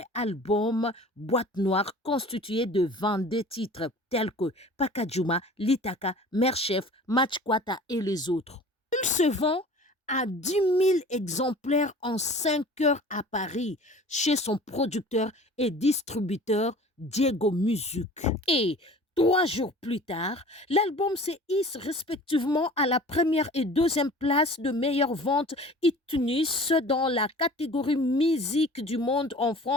album Boîte Noire constitué de 22 titres tels que Pakajuma, Litaka, Merchef, Matchkwata et les autres. Il se vend à 10 000 exemplaires en 5 heures à Paris chez son producteur et distributeur Diego Music. Et 3 jours plus tard, l'album se hisse respectivement à la première et deuxième place de meilleure vente iTunes dans la catégorie musique du monde en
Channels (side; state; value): both; normal; correlation 0.44